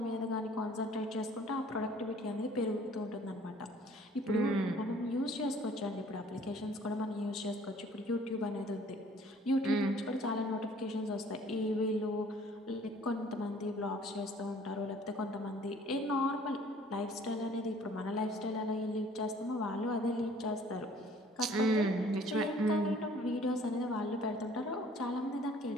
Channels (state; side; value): normal; both; correlation 0.55